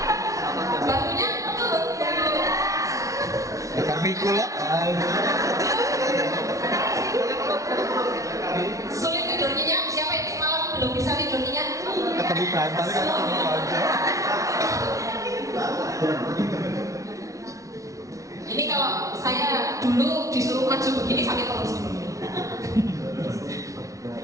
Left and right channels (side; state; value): left; late; 0.16 ms